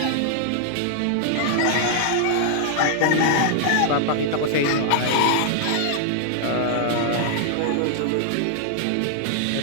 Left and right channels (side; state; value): both; different; correlation -0.01